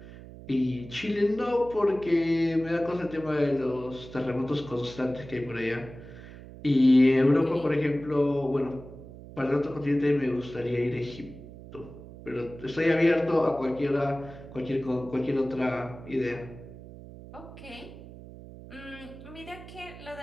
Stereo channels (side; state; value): right; noise; hum, 16 dB below the sound